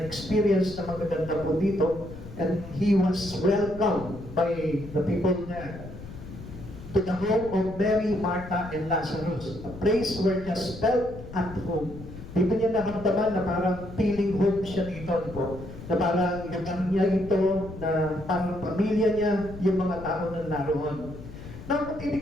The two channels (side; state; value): left; noise; rumble, 13 dB below the sound